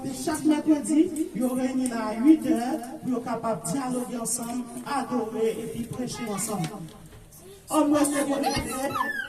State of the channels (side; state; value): both; identical; correlation 1.00